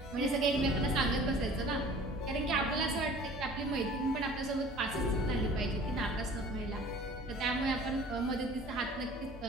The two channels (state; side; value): normal; both; correlation 0.47